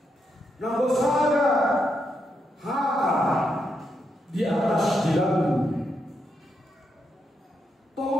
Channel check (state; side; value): normal; both; correlation 0.81